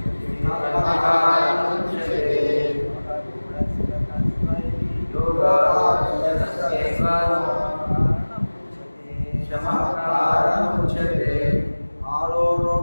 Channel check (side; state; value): both; inverted; correlation -1.00